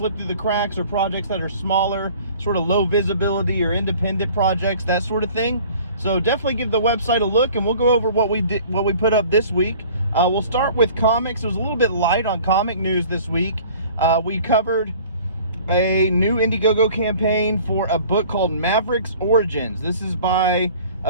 through the cracks, or projects that are smaller, sort of low visibility or independent projects, that sort of thing. So definitely give the website a look, and we'll go over what we put up this week. We'll start with comics. It was a little bit light on comic news this week. We covered a new Indiegogo campaign for a book called Maverick's Origins. This is by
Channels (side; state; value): both; inverted; correlation -0.49